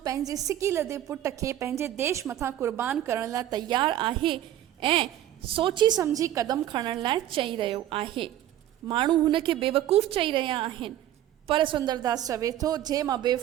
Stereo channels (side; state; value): left; quieter; 12.5 dB